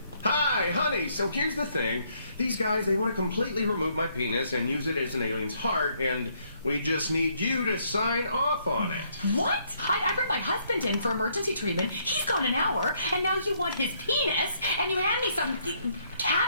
Hi, honey. So here's the thing. These guys, they want to completely remove my penis and use it as an alien's heart, and we just need you to sign off on it. What? I brought my husband in for emergency treatment. He's gone an hour, and now you want his penis, and you hand me some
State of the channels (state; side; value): inverted; both; correlation -0.70